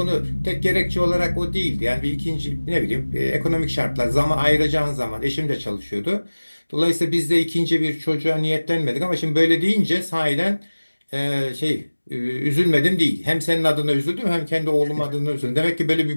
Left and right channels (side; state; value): both; inverted; correlation -1.00